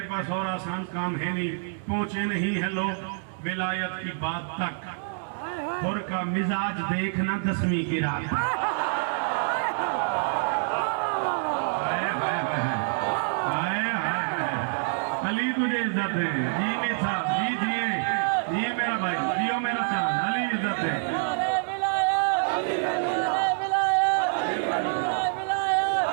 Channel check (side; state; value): left; silent; 60 dB below the other